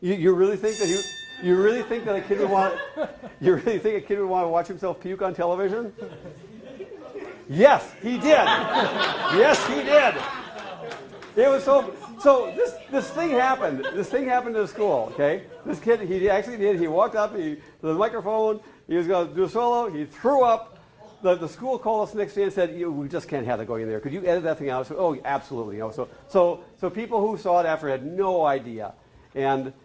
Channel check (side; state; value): both; identical; correlation 1.00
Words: really think that you really think that a kid would want to watch himself puke on television? Yes, he did. Yes, he did. It was so. This thing happened. This thing happened in the school. Okay, this kid he actually did. He walked up to the microphone. He was going to do a solo. He threw up. The school called us the next day and said, "We just can't have that going in there. Could you edit that thing out?" So, oh, absolutely. So people who saw it after had no idea, and